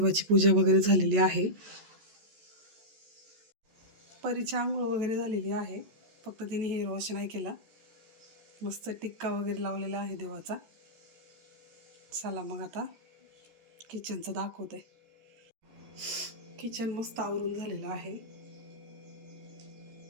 पूजा वगैरे झालेली आहे. परीची आंघोळ वगैरे झालेली आहे. फक्त तिने हेअर वॉश नाही केला. मस्त टिक्का वगैरे लावलेला आहे देवाचा. चला मग आता किचनचं दाखवते. किचन मस्त आवरून झालेलं आहे.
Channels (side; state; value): left; late; 14 ms